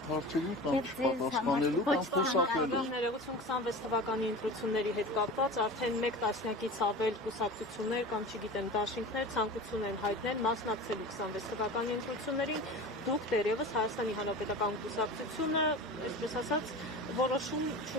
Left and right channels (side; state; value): both; normal; correlation 0.33